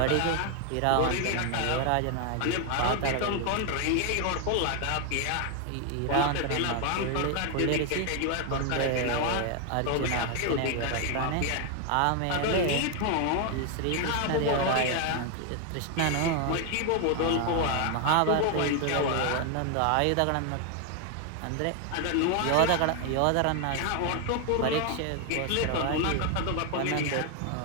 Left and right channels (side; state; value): both; different; correlation 0.01